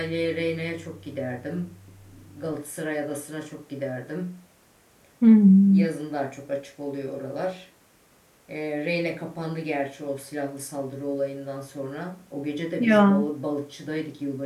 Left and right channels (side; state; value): both; identical; correlation 1.00